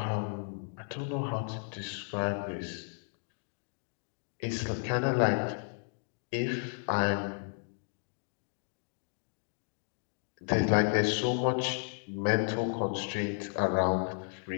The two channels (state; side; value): silent; right; 55 dB below the other